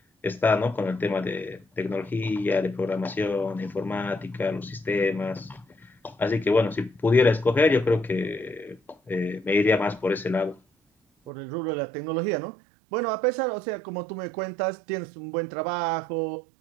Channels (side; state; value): left; drops out; at 11.3 s